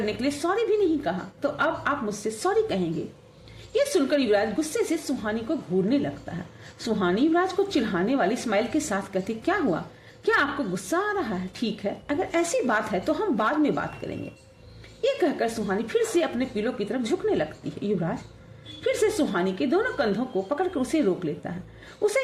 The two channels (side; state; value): both; identical; correlation 1.00